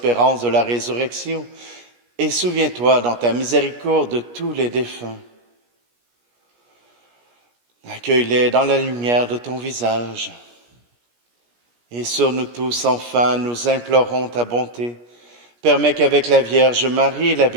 de la résurrection, et souviens-toi dans ta miséricorde de tous les défunts. Accueille-les dans la lumière de ton visage. Et sur nous tous, enfin, nous implorons ta bonté. Permets qu'avec la Vierge Marie, la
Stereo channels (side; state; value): left; late; 17 ms